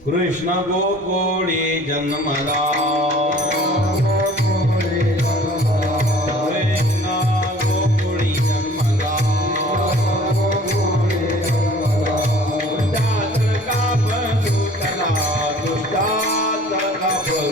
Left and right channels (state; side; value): normal; both; correlation 0.50